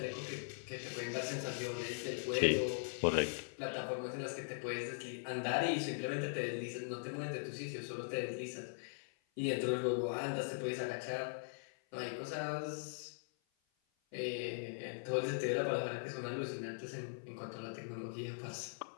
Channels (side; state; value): right; silent; 51 dB below the other